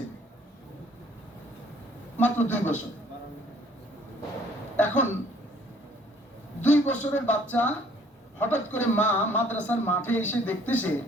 মাত্র 2 বছর। এখন 2 বছরের বাচ্চা হঠাৎ করে মা মাদ্রাসার মাঠে এসে দেখতেছে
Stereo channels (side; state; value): both; normal; correlation 0.59